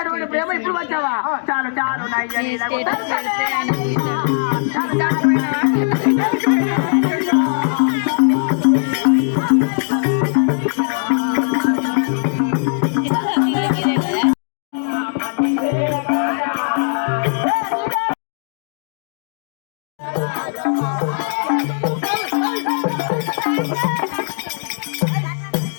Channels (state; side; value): silent; right; digital silence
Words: ప్రేమ ఇప్పుడు వచ్చావా? చాలు చాలు